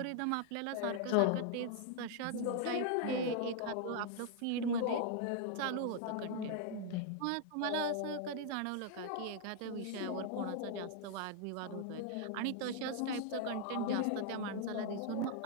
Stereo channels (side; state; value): both; different; correlation 0.00